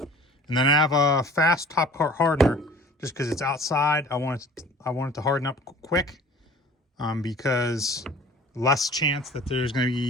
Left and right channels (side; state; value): both; normal; correlation 0.46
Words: and then I have a fast top coat hardener. Just because it's outside, I want it to harden up quick, because less chance that there's going to